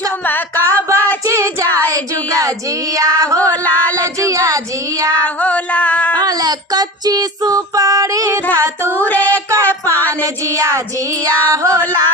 कच्ची सुपारी धतूरे का पान जिया जिया हो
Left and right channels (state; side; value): normal; both; correlation 0.31